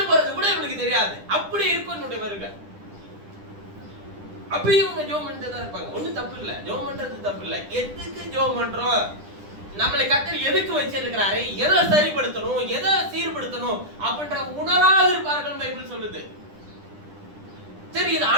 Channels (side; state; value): left; late; 10 ms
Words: போறது கூட இவனுக்கு தெரியாது, அப்படி இருக்கும் என்னுடைய வருகை. அப்பயும் இவங்க ஜெபம் பண்ணிட்டு தான் இருப்பாங்க. ஒண்ணும் தப்பு இல்ல, ஜெபம் பண்றது தப்பு இல்ல. எதுக்கு ஜெபம் பண்றோம்? நம்மளை கர்த்தர் எதுக்கு வச்சிருக்கிறாரு, எதை சரிப்படுத்தணும், எதை சீர்படுத்தணும் அப்படின்ற உணராக இருப்பார்கள் பைபிள் சொல்லுது. சரி, இது